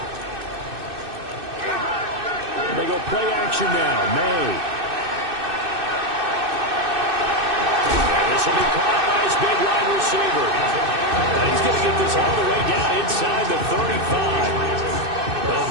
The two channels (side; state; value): left; late; 2.6 ms